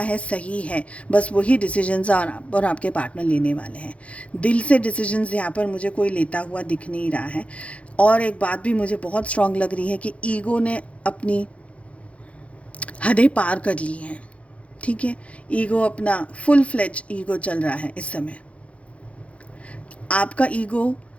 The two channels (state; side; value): late; right; 0.063 ms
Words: है सही है, बस वही डिसीजंस और आपके पार्टनर लेने वाले हैं। दिल से डिसीजंस यहाँ पर मुझे कोई लेता हुआ दिख नहीं रहा है। और एक बात भी मुझे बहुत स्ट्रांग लग रही है कि ईगो ने अपनी हदें पार कर ली हैं। ठीक है, ईगो अपना फुल फ्लेज ईगो चल रहा है इस समय। आपका ईगो